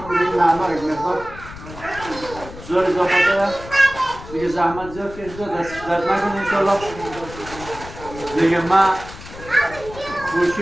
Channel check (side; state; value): left; noise; rumble, 15 dB below the sound